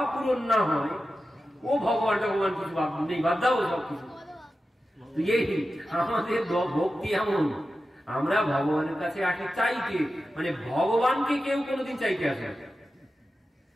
পূরণ না হয়, ও ভগবান ভগবান কিছু নেই, বাদ দাও সব কিছু। এই আমাদের ভক্তি এমন, আমরা ভগবানের কাছে আসি চাইতে, মানে ভগবানকে কেউ কোনোদিন চাইতে আসে না।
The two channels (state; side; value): normal; both; correlation 0.92